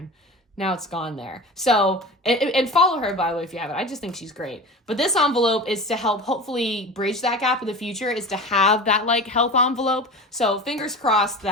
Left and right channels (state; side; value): normal; both; correlation 0.32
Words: now it's gone there. So, and follow her, by the way, if you haven't. I just think she's great. But this envelope is to help hopefully bridge that gap in the future, is to have that like health envelope. So fingers crossed